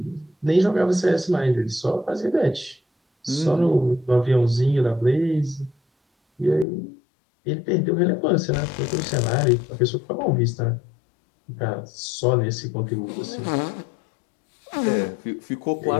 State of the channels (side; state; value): right; drops out; at 6.7 s